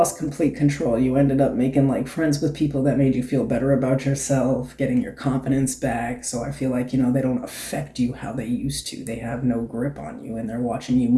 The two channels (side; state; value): both; identical; correlation 1.00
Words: complete control. You ended up making like friends with people that made you feel better about yourself, getting your confidence back. So I feel like, they don't affect you how they used to. They have no grip on you and they're watching you